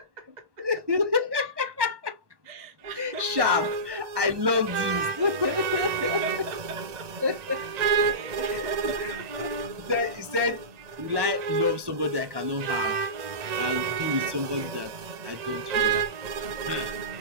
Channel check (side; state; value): left; late; 1.2 ms